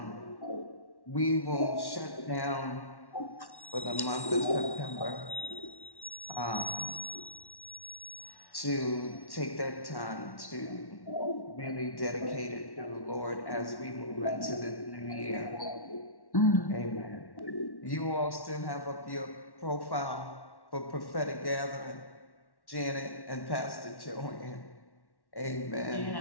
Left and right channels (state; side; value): late; right; 1.1 ms